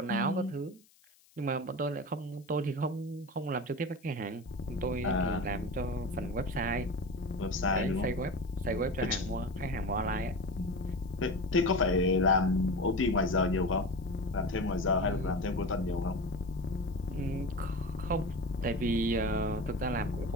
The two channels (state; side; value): noise; left; hiss, 30 dB below the sound